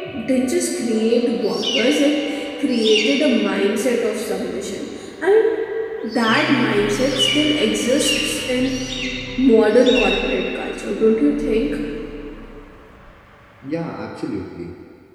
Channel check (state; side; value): identical; both; correlation 1.00